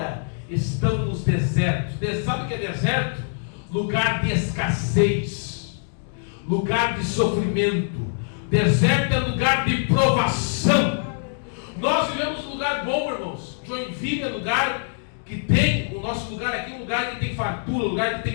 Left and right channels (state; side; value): silent; right; digital silence